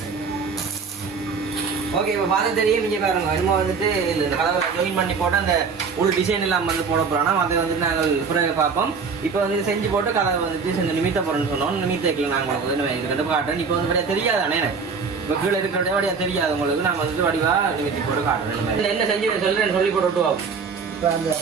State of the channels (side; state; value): left; quieter; 5.3 dB